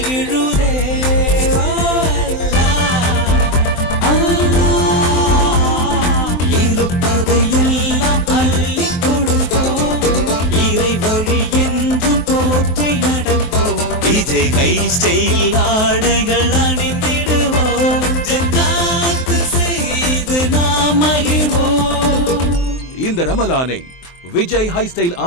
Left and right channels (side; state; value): right; late; 23 ms